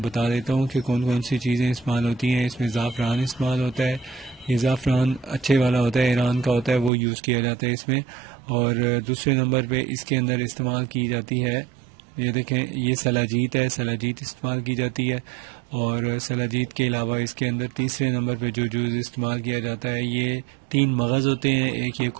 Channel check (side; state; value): left; drops out; at 6.9 s